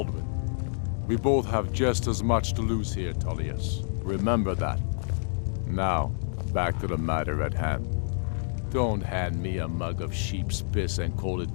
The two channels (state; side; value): silent; right; digital silence